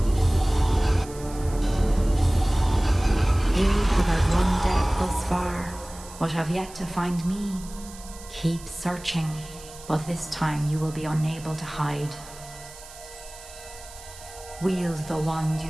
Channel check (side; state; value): right; noise; hiss, 18 dB below the sound